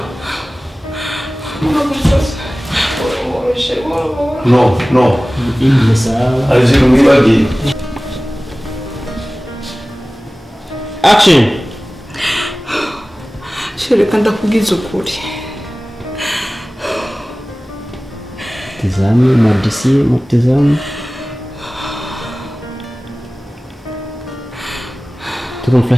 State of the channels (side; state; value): both; normal; correlation 0.97